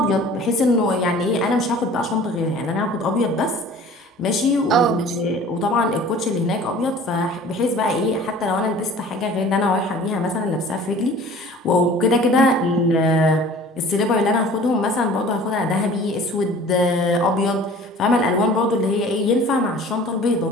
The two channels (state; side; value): normal; both; correlation 0.46